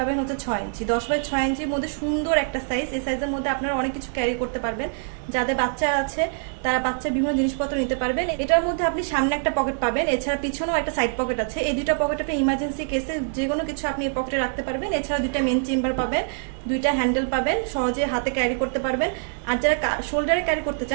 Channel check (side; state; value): left; silent; 62 dB below the other